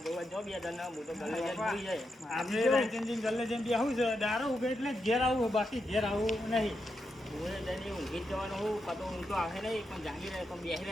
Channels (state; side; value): normal; both; correlation 0.85